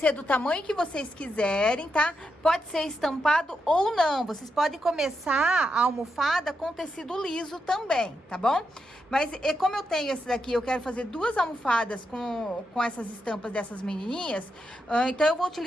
do tamanho que vocês quiserem, tá? Pode ser estampado ou não, vocês podem começar a almofada com tecido liso também, tá bom? Mas como eu tenho esse daqui, eu quero fazer duas almofadas com essas estampas dessas menininhas, então eu vou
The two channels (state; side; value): normal; both; correlation 0.84